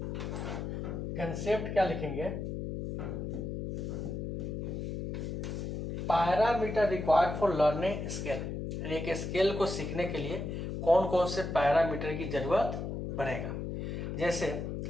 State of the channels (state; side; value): noise; left; hum, 4 dB below the sound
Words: कंसेप्ट क्या लिखेंगे? Parameter required for learning scale, यानी एक स्केल को सीखने के लिए कौन कौन से पैरामीटर की जरूरत पड़ेगा। जैसे